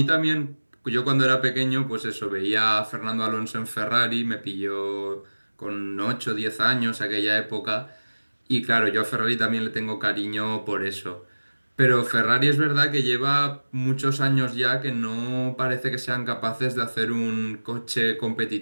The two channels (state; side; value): inverted; both; correlation -1.00